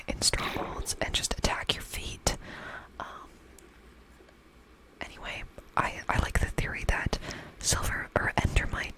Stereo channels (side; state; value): both; identical; correlation 1.00